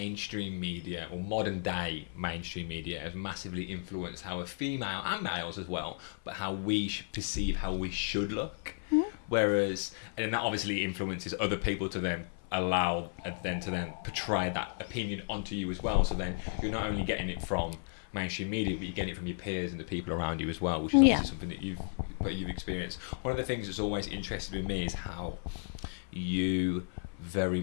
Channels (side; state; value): right; silent; 55 dB below the other